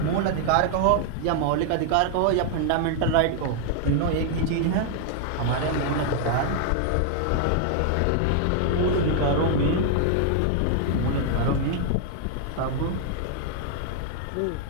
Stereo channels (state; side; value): different; both; correlation 0.00